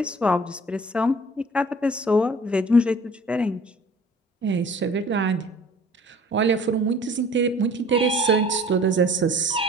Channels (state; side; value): normal; both; correlation 0.49